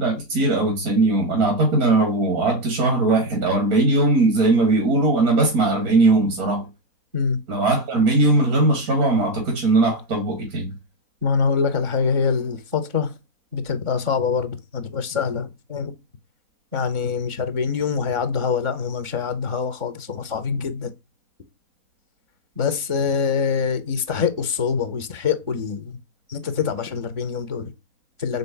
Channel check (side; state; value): left; late; 3.6 ms